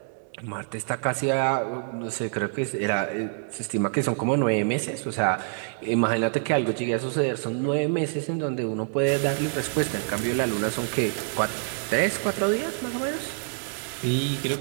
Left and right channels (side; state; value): left; silent; 61 dB below the other